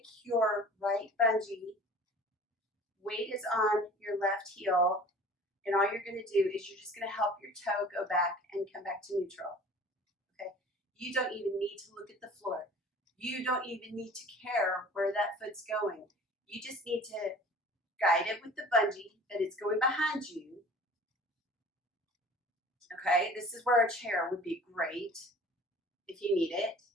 your right bungee. Weight is on your left heel. And all you're going to do is you're just going to help your toe go back and come back to neutral. Okay? You don't even need to look at the floor. You don't even need to care where that foot's going. You just need to guide it with the bungee that it's going behind you. Okay? This is where a chair would be great if you need it.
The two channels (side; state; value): both; normal; correlation 0.45